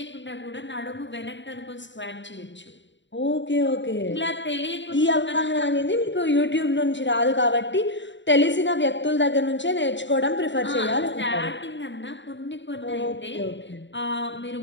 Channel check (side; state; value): right; late; 0.53 ms